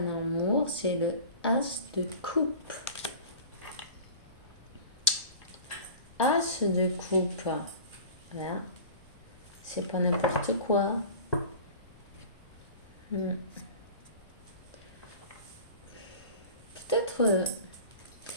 amour, c'est le As de coupe. As de coupe. Voilà. C'est pas n'importe quoi.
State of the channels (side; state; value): both; inverted; correlation -0.39